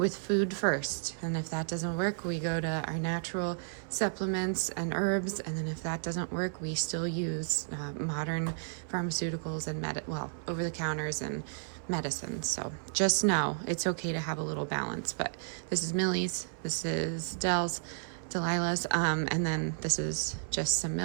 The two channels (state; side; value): silent; left; 56 dB below the other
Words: food first, and if that doesn't work, we go to our natural supplements and herbs, and then if that doesn't work, we still use modern pharmaceuticals and over the counters and medicine. So just know it's okay to have a little balance. But this is Millie's, this is Delilah's, and then this is just some